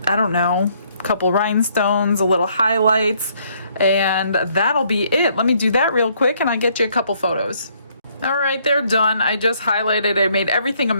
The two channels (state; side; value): inverted; both; correlation -0.67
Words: I don't know, a couple rhinestones, a little highlights, and that'll be it. Let me do that real quick and I'll get you a couple photos. All right, they're done. I just highlighted, I made everything a